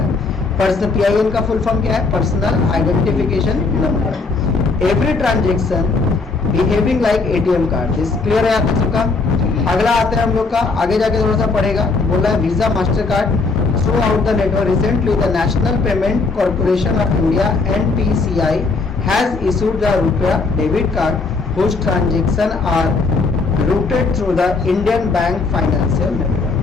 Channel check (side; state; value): right; quieter; 4.0 dB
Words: पर्सनल PIN का फुल फॉर्म क्या है, personal identification number. Every transaction behaving like ATM card. This clear है आप सबका। अगला आते हैं हम लोग का, आगे जाके थोड़ा सा पढ़ेगा। बोल रहा है Visa Master card through out the network. Recently the National Payment Corporation of India NPCI has issued the RuPay debit card whose transaction are routed through the Indian Bank Financial Network।